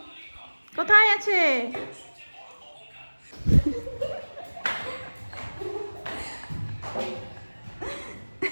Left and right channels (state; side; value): inverted; both; correlation -1.00